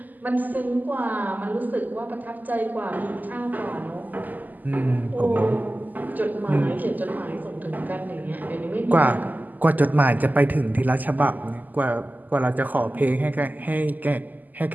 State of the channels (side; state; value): left; late; 0.083 ms